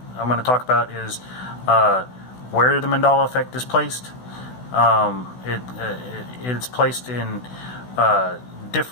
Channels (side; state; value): right; late; 16 ms